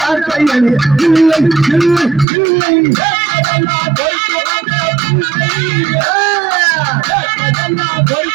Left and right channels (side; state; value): left; drops out; at 2.2 s